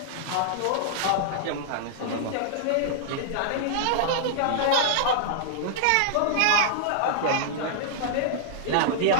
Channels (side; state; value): both; different; correlation -0.01